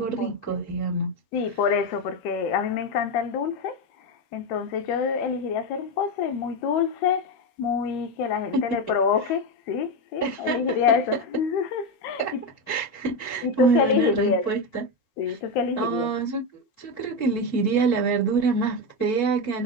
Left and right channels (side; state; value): right; late; 6.7 ms